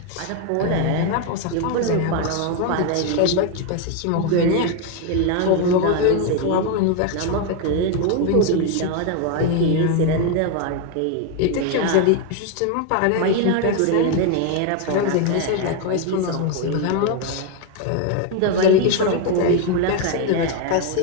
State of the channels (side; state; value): both; different; correlation 0.01